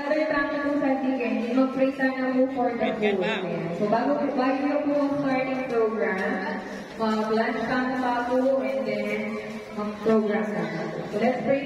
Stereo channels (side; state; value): both; identical; correlation 1.00